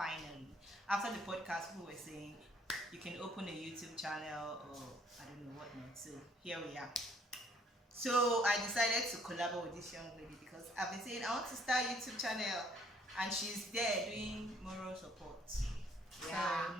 After the podcast, people were saying you can open a YouTube channel or I don't know what not. So here we are. So I decided to collaborate with this young lady because I've been saying I want to start a YouTube channel, and she's there doing moral support. Yeah. So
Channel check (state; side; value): normal; both; correlation 0.62